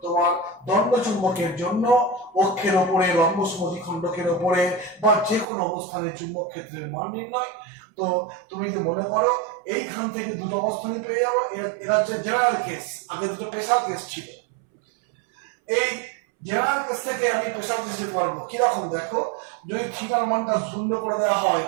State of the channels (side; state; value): left; drops out; at 5.5 s